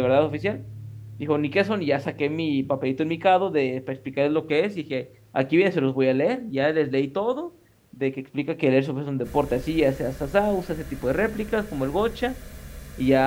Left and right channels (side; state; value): both; identical; correlation 1.00